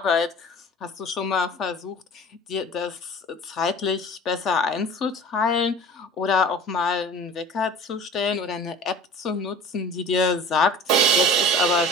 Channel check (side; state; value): both; normal; correlation 0.41